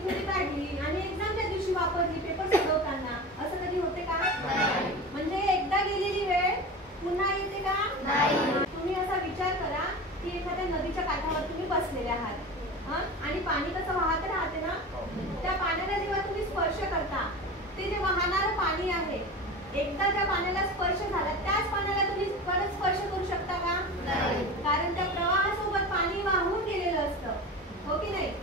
थोडी काढली आणि एक्झामच्या दिवशी वापरली पेपर सोडवताना, असं कधी होते का? म्हणजे एकदा गेलेली वेळ पुन्हा येते का? तुम्ही असा विचार करा की एखाद्या नदीच्या काठावर तुम्ही बसलेले आहात आणि पाणी कसं वाहत राहते ना, त्या पाण्याला जेव्हा तुम्ही स्पर्श करता ते जे वाहणारं पाणी आहे, एकदा त्या पाण्याला स्पर्श झाला त्याच पाण्याला तुम्ही परत स्पर्श करू शकता का? कारण त्या प्रवाहासोबत पाणी वाहून गेलेलं असतं, हो की नाही?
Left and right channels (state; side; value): normal; both; correlation 0.30